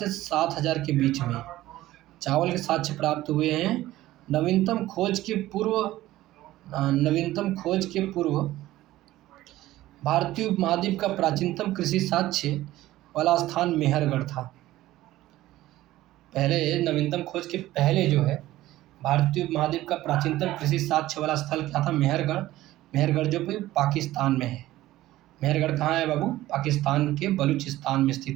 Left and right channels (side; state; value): left; quieter; 15.8 dB